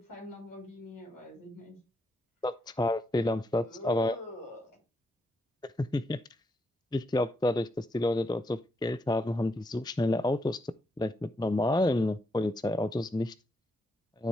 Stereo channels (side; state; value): both; normal; correlation 0.80